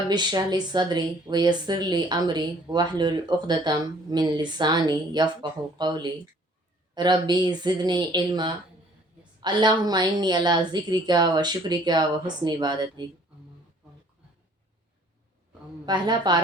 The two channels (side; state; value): both; normal; correlation 0.57